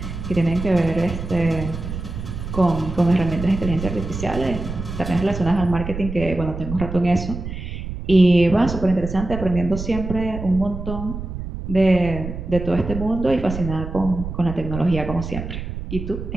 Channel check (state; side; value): noise; right; rumble, 7 dB below the sound